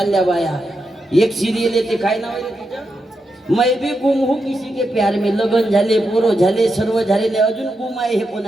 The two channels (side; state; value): both; normal; correlation 0.86